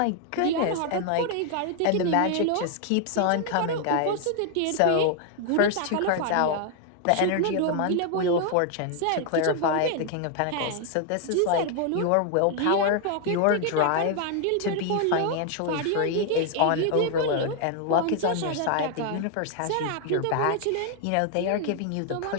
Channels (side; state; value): both; different; correlation 0.00